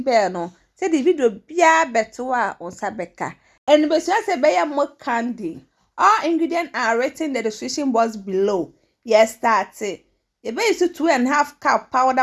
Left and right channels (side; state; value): both; identical; correlation 1.00